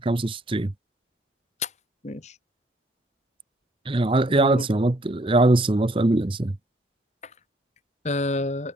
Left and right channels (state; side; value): normal; both; correlation 0.65